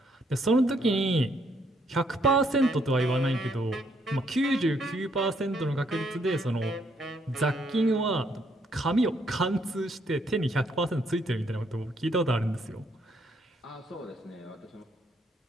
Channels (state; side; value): normal; both; correlation 0.71